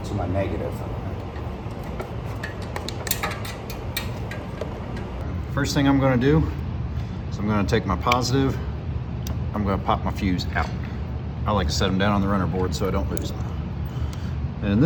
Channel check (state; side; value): identical; both; correlation 1.00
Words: to my negative. First thing I'm going to do, so I'm going to take my positive, I'm going to pop my fuse out. I like to set them down on the runner board so I don't lose them. And in